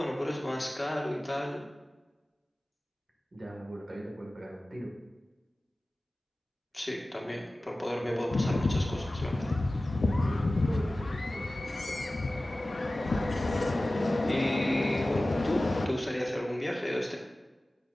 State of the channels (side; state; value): both; normal; correlation 0.97